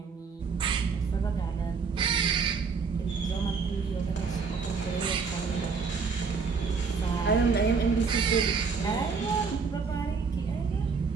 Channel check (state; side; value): quieter; left; 5.2 dB